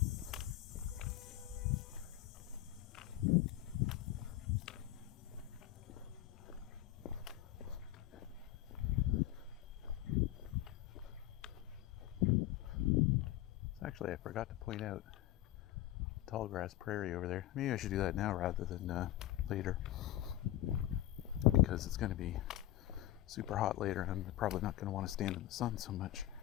Actually, I forgot to point out tall grass prairie over there. Maybe I should do that now rather than later, because it's going to be super hot later and I'm probably not going to want to stand in the sun so much.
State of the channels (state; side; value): quieter; right; 14.4 dB